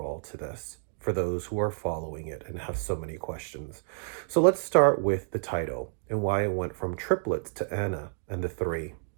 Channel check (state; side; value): silent; left; digital silence